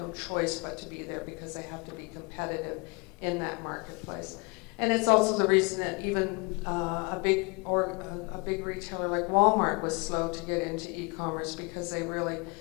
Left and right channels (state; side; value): quieter; right; 30.4 dB